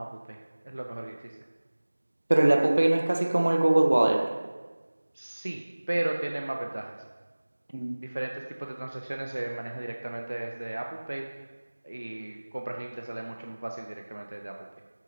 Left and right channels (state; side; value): inverted; both; correlation -1.00